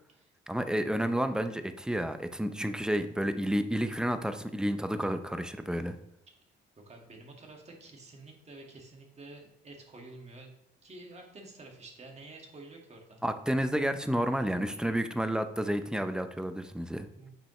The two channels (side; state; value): both; normal; correlation 0.92